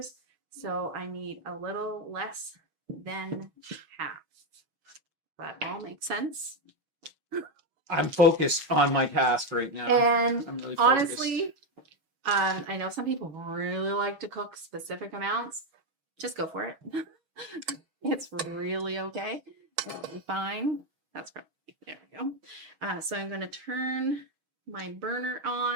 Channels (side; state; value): left; late; 6.2 ms